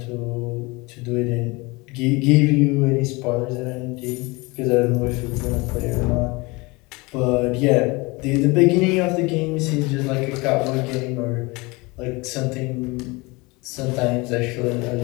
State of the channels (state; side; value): quieter; right; 25.1 dB